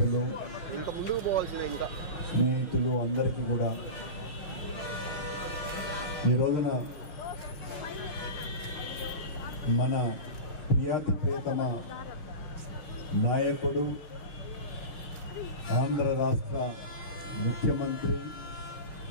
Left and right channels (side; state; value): right; late; 6.0 ms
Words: ఇంకా ముందుకు పోవాల్సిన ఇంకా స్నేహితులు అందరికీ కూడా ఈ రోజున మన ప్రియాతి ప్రియతమ నాయకుడు, ఆంధ్ర రాష్ట్ర ముఖ్యమంత్రి,